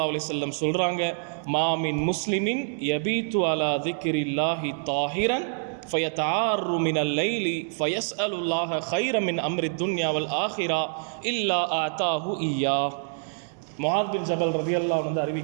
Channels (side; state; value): left; silent; digital silence